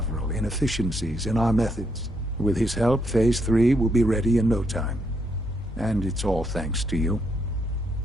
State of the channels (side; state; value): both; normal; correlation 0.76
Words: inefficiencies in our methods. With his help, Phase 3 will be ready in no time. And it's all thanks to you.